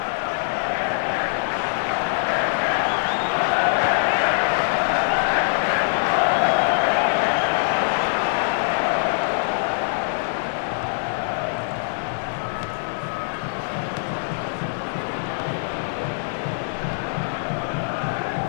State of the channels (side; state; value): right; silent; digital silence